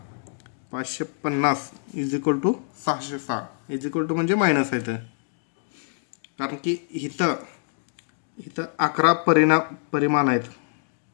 550 is equal to 606 is equal to म्हणजे मायनस आहे ते, कारण की इथं 11 परिमाण आहेत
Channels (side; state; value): right; silent; digital silence